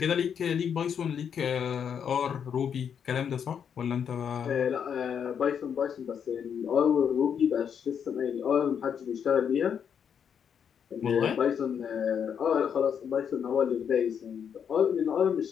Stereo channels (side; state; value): right; quieter; 7.7 dB